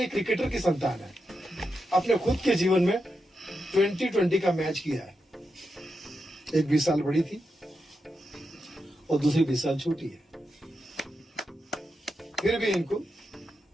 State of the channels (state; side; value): normal; both; correlation 0.87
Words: क्रिकेटर की संतान है, अपने खुद के जीवन में 2020 का मैच किया है। एक 20 साल बड़ी थी और दूसरी 20 साल छोटी है, फिर भी इनको